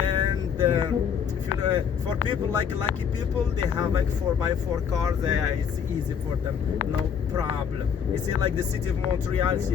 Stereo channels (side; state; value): right; quieter; 7.4 dB